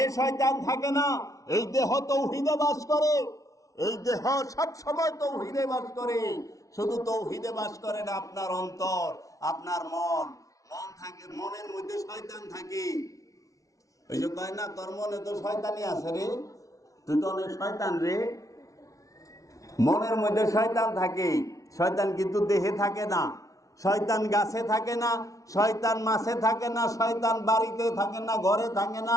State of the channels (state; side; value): late; right; 0.17 ms